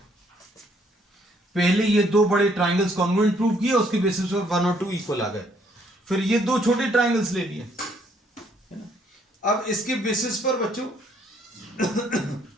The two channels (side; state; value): both; normal; correlation 0.67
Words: पहले ये 2 बड़े ट्राइंगल्स कॉन्ग्रुएंट प्रूव किए, उसके बेसिस पर 1 और 2 इक्वल आ गए। फिर ये 2 छोटे ट्राइंगल्स ले लिए, है ना। अब इसके बेसिस पर बच्चों